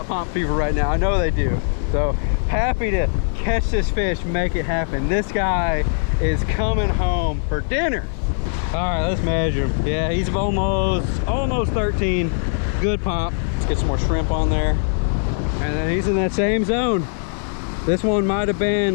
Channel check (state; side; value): silent; right; 65 dB below the other